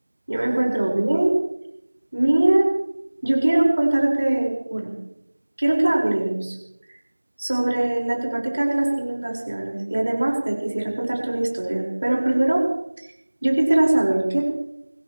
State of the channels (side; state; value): both; inverted; correlation -1.00